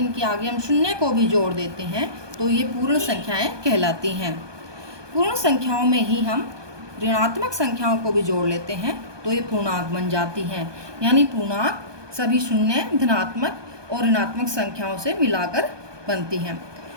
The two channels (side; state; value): left; late; 1.2 ms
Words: आगे हम शून्य को भी जोड़ देते हैं तो ये पूर्ण संख्याएं कहलाती हैं। पूर्ण संख्याओं में ही हम ऋणात्मक संख्याओं को भी जोड़ लेते हैं तो ये पूर्णांक बन जाती हैं। यानी पूर्णांक सभी शून्य, धनात्मक और ऋणात्मक संख्याओं से मिलाकर बनती हैं।